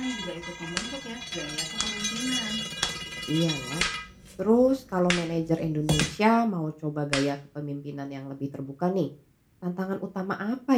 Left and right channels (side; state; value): both; identical; correlation 1.00